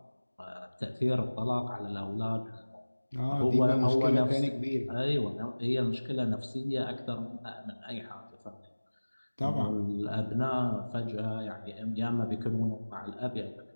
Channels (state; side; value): inverted; both; correlation -1.00